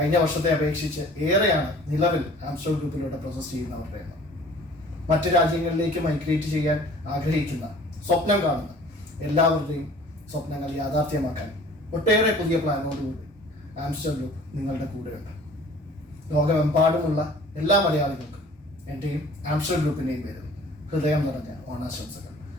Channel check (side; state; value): both; normal; correlation 0.49